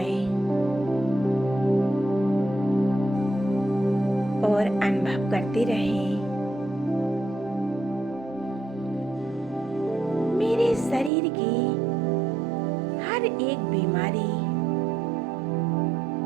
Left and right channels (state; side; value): drops out; left; at 11.1 s